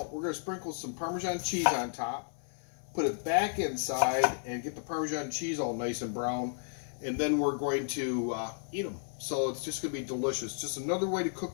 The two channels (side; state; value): right; silent; 56 dB below the other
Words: We're going to sprinkle some Parmesan cheese on top, put it back inside, and get the Parmesan cheese all nice and brown. And then we're going to eat them. So it's just going to be delicious. Just another way to